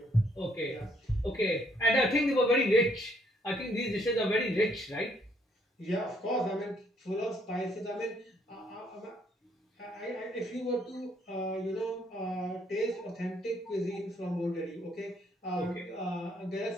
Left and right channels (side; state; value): both; normal; correlation 0.69